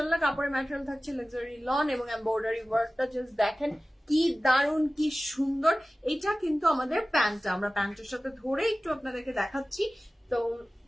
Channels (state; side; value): normal; both; correlation 0.97